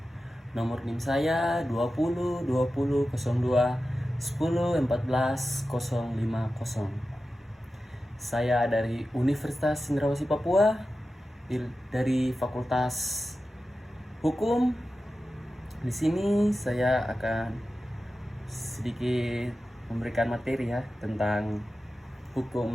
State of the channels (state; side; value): normal; both; correlation 0.93